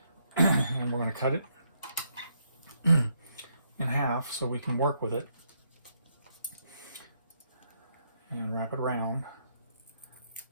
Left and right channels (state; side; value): inverted; both; correlation -0.75